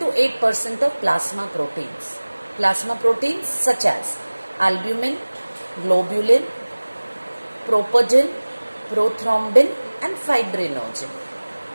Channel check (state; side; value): inverted; both; correlation -1.00